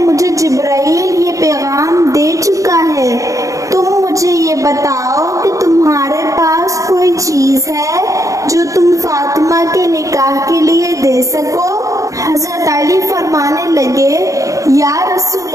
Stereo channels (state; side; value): late; left; 0.16 ms